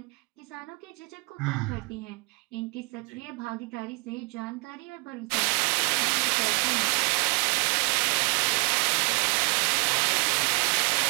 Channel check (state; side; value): quieter; left; 31.6 dB